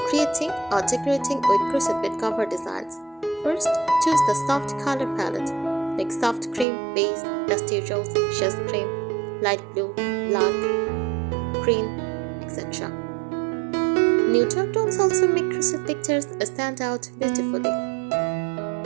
creating or decorating with crochet bed cover designs. First, choose the soft color palette like soft cream, beige, dusty rose, chess cream, light blue, black, green, etc. Neutral tones also make crochet textures stand out beautifully.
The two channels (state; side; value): drops out; left; at 6.7 s